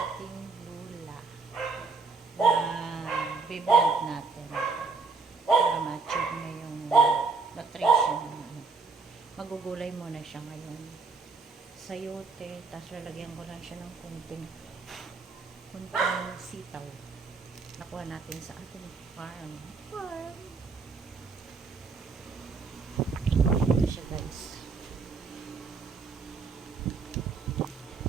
lula na biblend natin para ma-achieve na yung nutrition. Magugulay muna siya ngayon. Sayote, tapos lalagyan ko lang siya ng kunting sitaw. Nakuha natin sa ating farm. Ito siya, guys.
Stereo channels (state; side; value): quieter; left; 4.4 dB